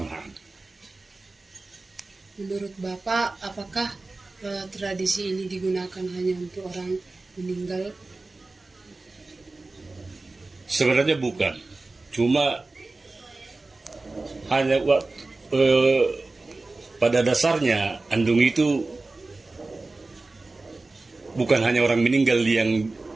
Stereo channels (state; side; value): quieter; left; 3.3 dB